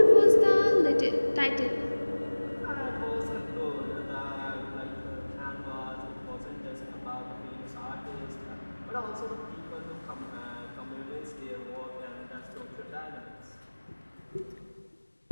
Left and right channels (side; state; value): both; inverted; correlation -1.00